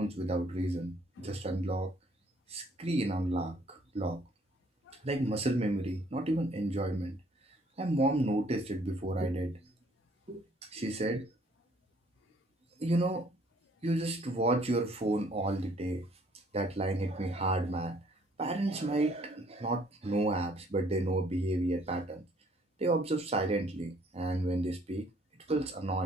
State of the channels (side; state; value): both; normal; correlation 0.62